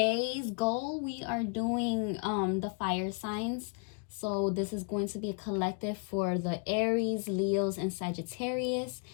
goal, we are doing the fire signs. So this is going to be a collective for the Aries, Leos, and Sagittarius,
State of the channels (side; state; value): right; quieter; 39.9 dB